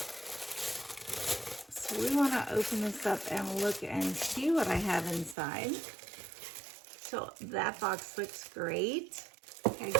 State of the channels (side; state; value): left; drops out; at 5.4 s